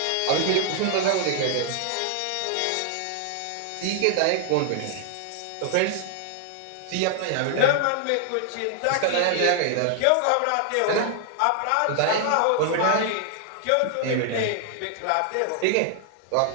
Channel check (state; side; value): different; both; correlation 0.00